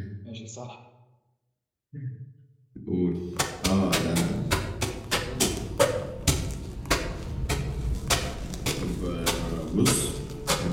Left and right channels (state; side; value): identical; both; correlation 1.00